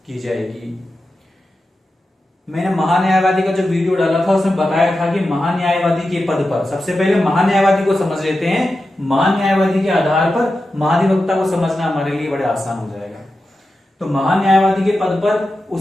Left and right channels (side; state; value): both; normal; correlation 0.91